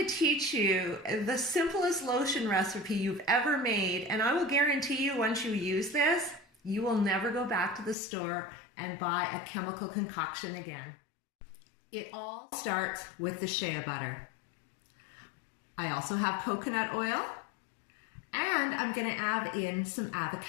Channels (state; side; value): drops out; right; at 8.0 s